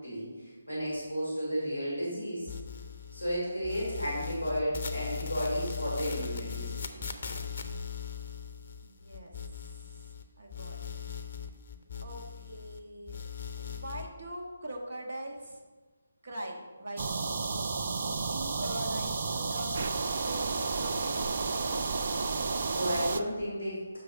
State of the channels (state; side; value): inverted; both; correlation -0.80